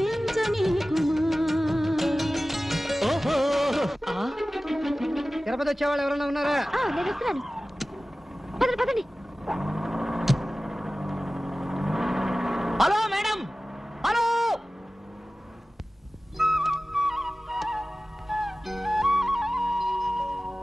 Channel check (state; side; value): normal; both; correlation 0.96